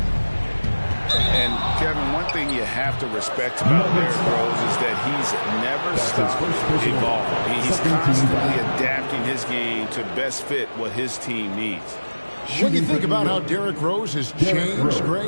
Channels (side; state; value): both; inverted; correlation -1.00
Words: And, Kevin, one thing you have to respect about Derrick Rose is that he's never stopped evolving. He's constantly adapting his game to best fit what his team needs. When you think about how Derrick Rose has changed,